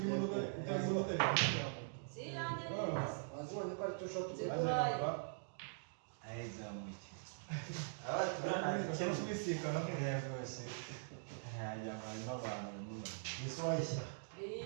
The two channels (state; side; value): silent; left; digital silence